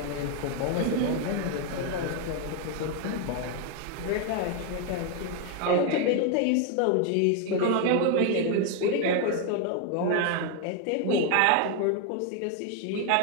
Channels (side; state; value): both; different; correlation 0.01